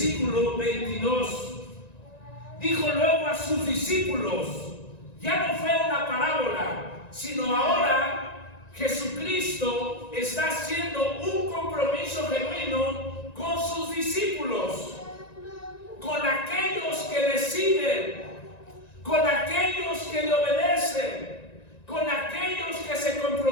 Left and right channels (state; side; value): late; right; 1.9 ms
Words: 22, dijo luego a sus discípulos, ya no fue una parábola, sino ahora Jesucristo está haciendo un compromiso genuino con sus discípulos, con aquellos que le siguen, con aquellos que le obedecen, con aquellos que se